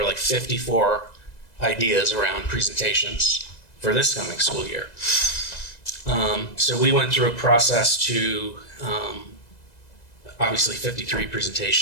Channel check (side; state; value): right; late; 2.0 ms